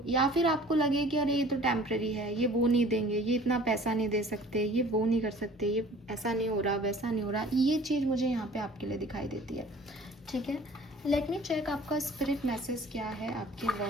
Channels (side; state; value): both; normal; correlation 0.49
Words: या फिर आपको लगे कि अरे ये तो टेम्प्रेरी है, ये वो नहीं देंगे, ये इतना पैसा नहीं दे सकते, ये वो नहीं कर सकते, ये ऐसा नहीं हो रहा, वैसा नहीं हो रहा। ये चीज़ मुझे यहाँ पे आपके लिए दिखाई देती है। ठीक है, लेट मी चेक आपका स्पिरिट मैसेज क्या है आपके